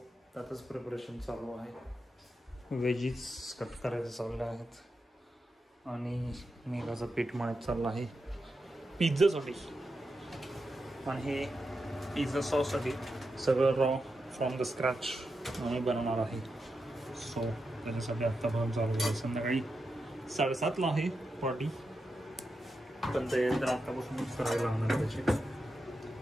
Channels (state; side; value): normal; both; correlation 0.88